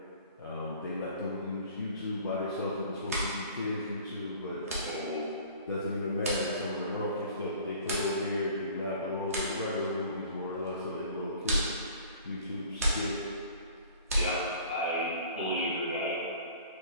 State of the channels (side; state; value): both; inverted; correlation -0.48